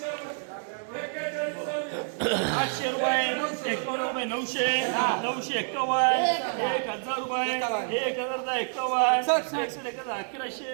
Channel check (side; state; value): left; silent; 59 dB below the other